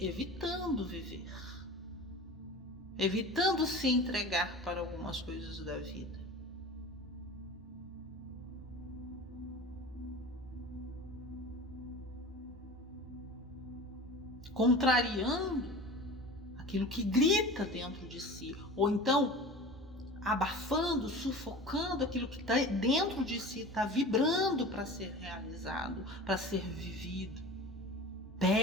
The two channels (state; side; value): normal; both; correlation 0.36